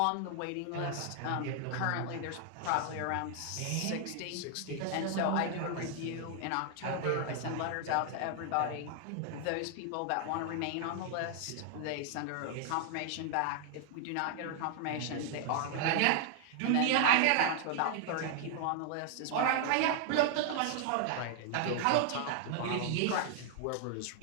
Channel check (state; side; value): different; both; correlation 0.00